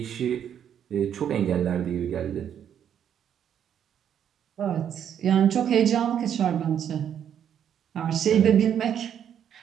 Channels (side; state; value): left; quieter; 9.1 dB